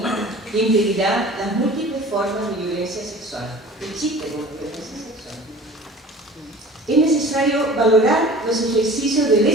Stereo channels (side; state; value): both; normal; correlation 0.43